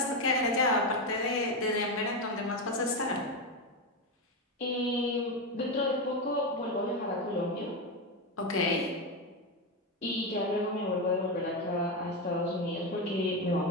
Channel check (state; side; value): normal; both; correlation 0.12